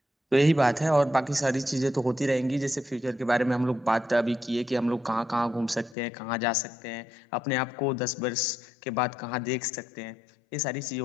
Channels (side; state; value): right; drops out; at 6.0 s